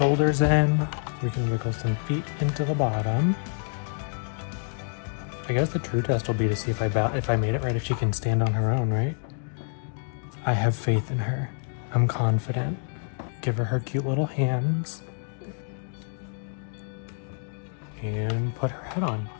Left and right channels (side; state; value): right; silent; 60 dB below the other